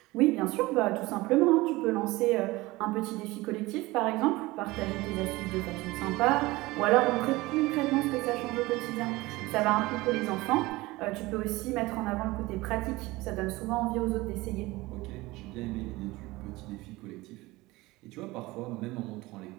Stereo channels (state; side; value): quieter; left; 20.5 dB